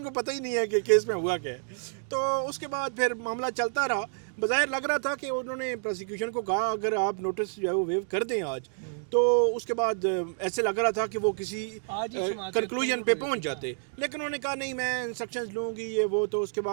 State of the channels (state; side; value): silent; left; digital silence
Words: کو پتہ ہی نہیں ہے کہ کیس میں ہوا کیا ہے. تو اس کے بعد پھر معاملہ چلتا رہا. بظاہر لگ رہا تھا کہ انہوں نے پروسیکیوشن کو کہا اگر آپ نوٹس جو ہے وہ ویو کر دیں آج، تو اس کے بعد ایسے لگ رہا تھا کہ وہ کسی کنکلوژن پہ پہنچ جاتے. لیکن انہوں نے کہا نہیں میں انسٹرکشنز لوں گی یہ وہ. تو اس کے